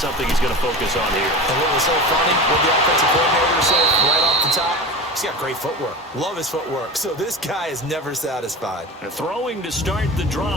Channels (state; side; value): normal; both; correlation 0.30